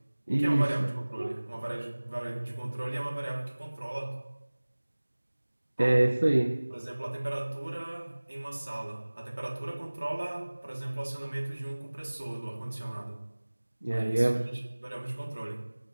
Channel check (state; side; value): inverted; both; correlation -1.00